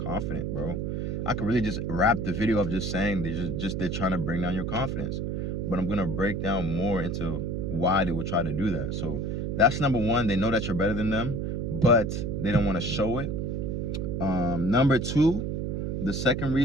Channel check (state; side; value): noise; right; hum, 2 dB below the sound